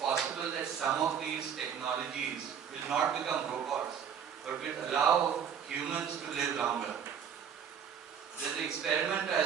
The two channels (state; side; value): quieter; left; 7.9 dB